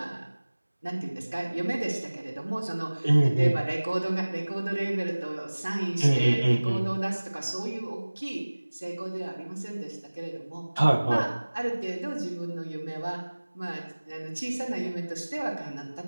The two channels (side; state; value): both; inverted; correlation -1.00